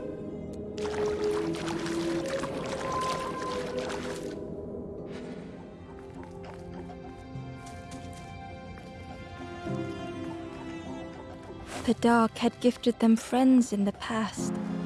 The dark had gifted them friends in the past.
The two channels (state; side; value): identical; both; correlation 1.00